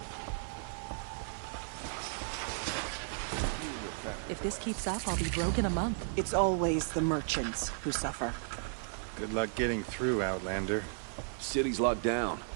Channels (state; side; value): silent; left; digital silence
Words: If this keeps up, I'll be broke in a month. It's always the merchants who suffer. Good luck getting through, Outlander. City's locked down